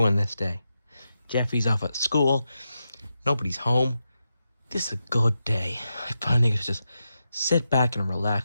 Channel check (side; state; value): both; inverted; correlation -0.88